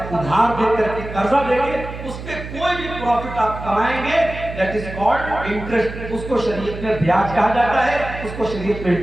ادھار دے کر کے قرضہ دے کے اس پہ کوئی بھی پروفٹ آپ کمائیں گے، دیٹ از کالڈ انٹرسٹ. اس کو شریعت میں بیاج کہا جاتا ہے، اس کو شریعت میں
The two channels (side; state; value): right; noise; hum, 10 dB below the sound